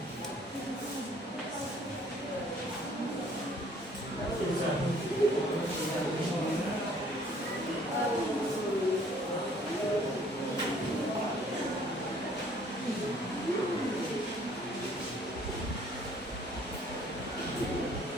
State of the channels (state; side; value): normal; both; correlation 0.58